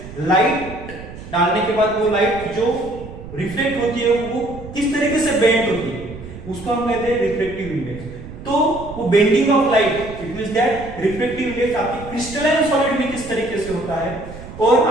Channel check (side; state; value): right; noise; rumble, 14 dB below the sound